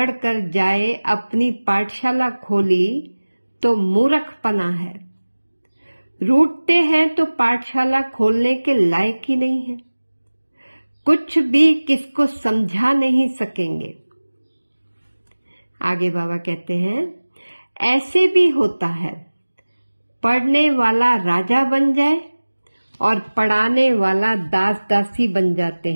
कर जाए अपनी पाठशाला खोली तो मूर्खपना है। रूठते हैं तो पाठशाला खोलने के लायक ही नहीं है। कुछ भी किसको समझा नहीं सकेंगे। आगे बाबा कहते हैं, ऐसे भी होता है, पढ़ने वाला राजा बन जाए और पढ़ाने वाला दास दासी बन जाते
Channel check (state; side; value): inverted; both; correlation -1.00